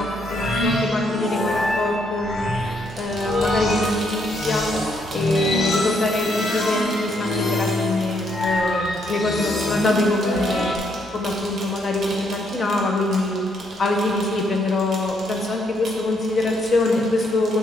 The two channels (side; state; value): both; normal; correlation 0.73